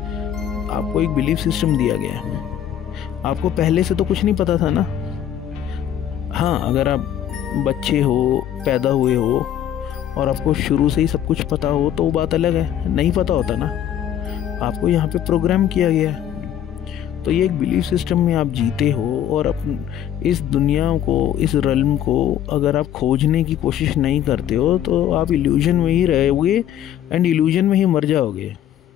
आपको एक बिलीफ सिस्टम दिया गया है। आपको पहले से तो कुछ नहीं पता था ना। हाँ, अगर आप बच्चे हो, पैदा हुए हो और आपको शुरू से ही सब कुछ पता हो तो वो बात अलग है। नहीं पता होता ना, आपको यहाँ पे प्रोग्राम किया गया है। तो ये एक बिलीफ सिस्टम में आप जीते हो, और इस दुनिया को, इस रल्म को अगर आप खोजने की कोशिश नहीं करते हो तो आप इल्यूजन में ही रहोगे, एंड इल्यूजन में ही मर जाओगे।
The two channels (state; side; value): quieter; right; 10.6 dB